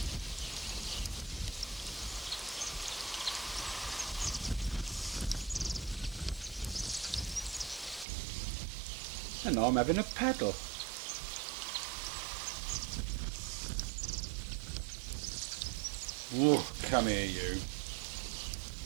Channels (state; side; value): drops out; left; at 8.1 s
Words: And I'm having a paddle. Whoa, come here you.